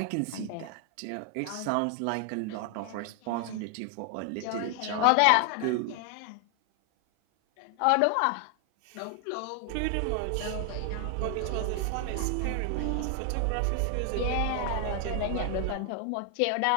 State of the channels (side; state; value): both; different; correlation 0.00